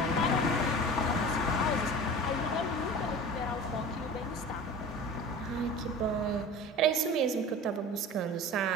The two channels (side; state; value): both; normal; correlation 0.37